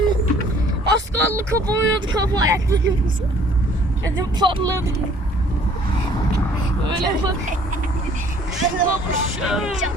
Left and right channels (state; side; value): normal; both; correlation 0.57